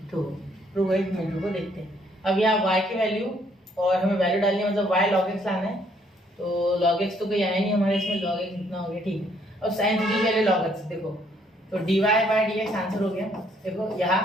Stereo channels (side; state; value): both; normal; correlation 0.67